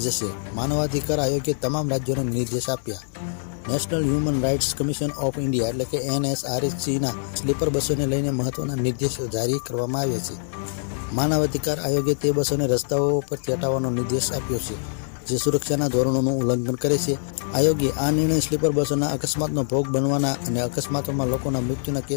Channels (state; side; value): silent; right; digital silence